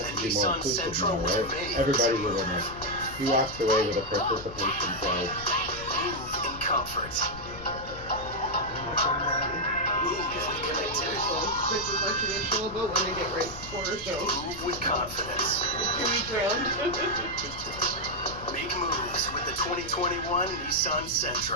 to be more Nissan inclusive Sentra now, was right? made. Everybody's a winner. He walks away with a participation prize. Move in comfort. This is my traditional boat when they get right quarter so. Move with confidence. 2 weeks round. Make moves with the 2021 Nissan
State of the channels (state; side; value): noise; left; rumble, 14 dB below the sound